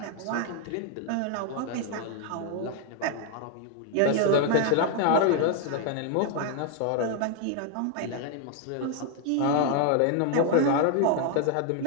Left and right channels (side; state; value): both; different; correlation 0.00